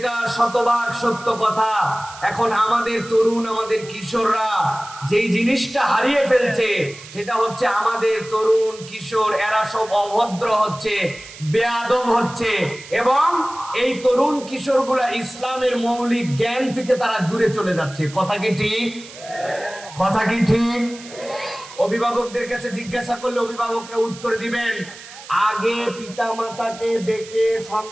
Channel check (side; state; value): right; noise; hiss, 17 dB below the sound